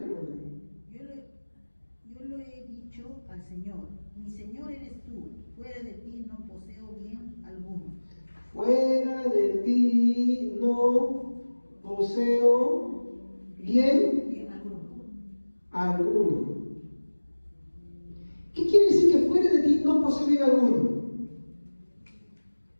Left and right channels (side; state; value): both; inverted; correlation -1.00